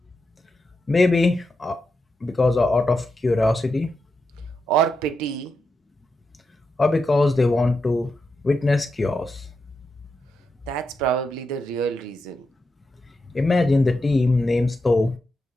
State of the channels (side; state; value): both; normal; correlation 0.86